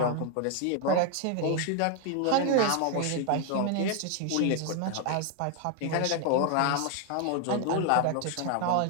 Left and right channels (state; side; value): different; both; correlation 0.00